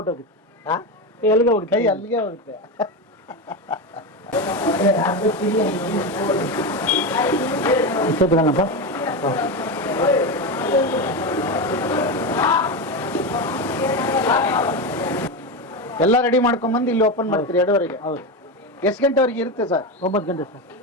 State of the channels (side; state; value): both; normal; correlation 0.16